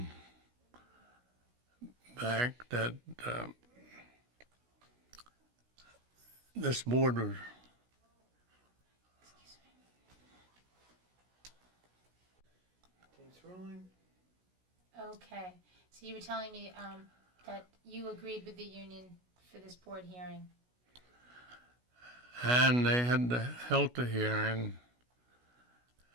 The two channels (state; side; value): late; left; 16 ms